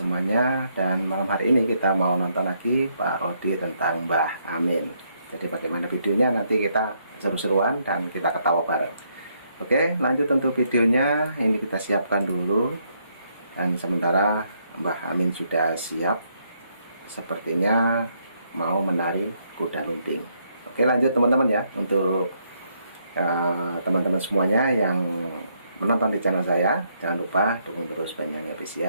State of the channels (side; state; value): both; inverted; correlation -0.74